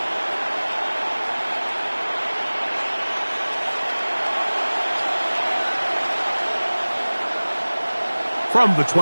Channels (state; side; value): inverted; both; correlation -1.00